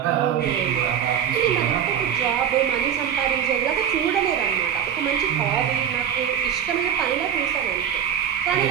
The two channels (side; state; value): left; quieter; 8.8 dB